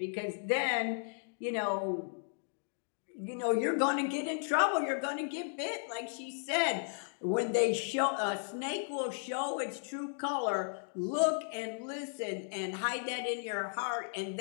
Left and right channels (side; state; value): right; silent; digital silence